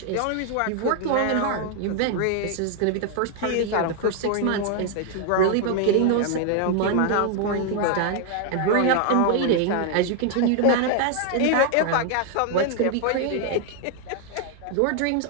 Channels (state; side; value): different; both; correlation 0.00